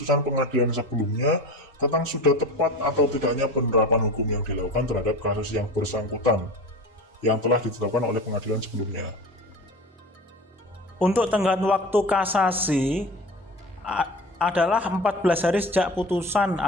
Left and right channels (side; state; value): both; normal; correlation 0.33